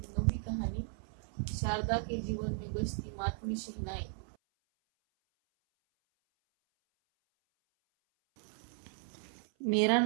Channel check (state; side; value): silent; left; 54 dB below the other